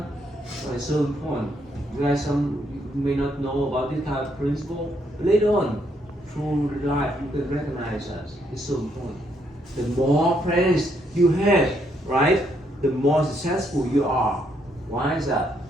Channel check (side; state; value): both; normal; correlation 0.74